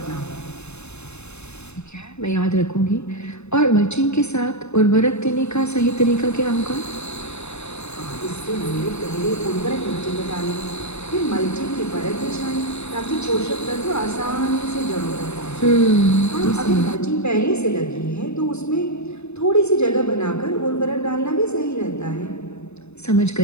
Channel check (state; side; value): late; right; 0.81 ms